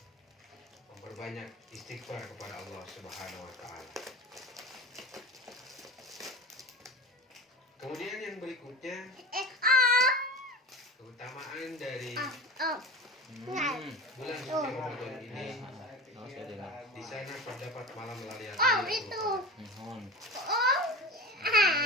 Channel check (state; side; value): normal; both; correlation 0.31